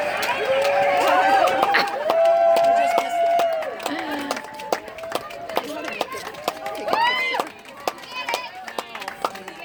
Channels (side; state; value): both; identical; correlation 1.00